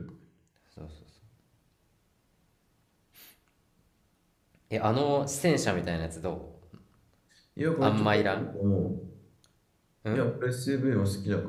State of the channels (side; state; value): both; identical; correlation 1.00